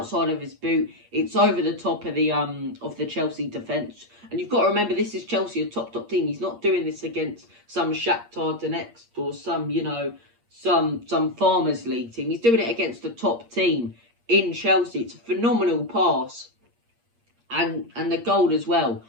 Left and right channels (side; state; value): left; late; 8.6 ms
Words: of his boot. It's over the top of the Chelsea defence. And you've got to remember, this is Chelsea, a top team. He's not doing this against some Shakhtar Donetsk or some Farmers League team. He's doing it against a top team in Chelsea. It's a phenomenal pass. And the goal as well.